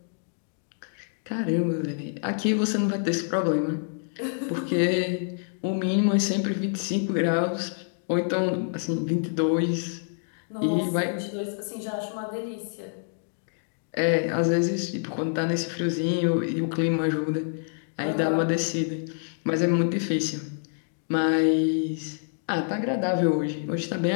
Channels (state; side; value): silent; right; digital silence